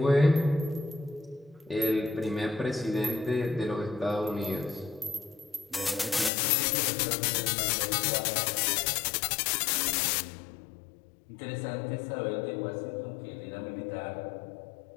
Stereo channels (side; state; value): right; drops out; at 6.3 s